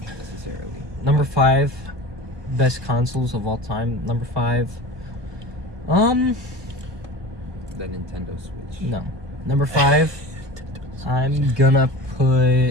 necessarily. Number 5, best consoles of all time. Number 5, The Nintendo Switch. no. Number 5, I'm gonna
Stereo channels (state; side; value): late; left; 1.2 ms